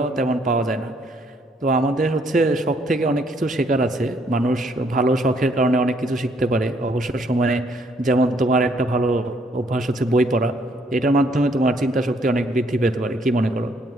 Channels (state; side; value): normal; both; correlation 0.67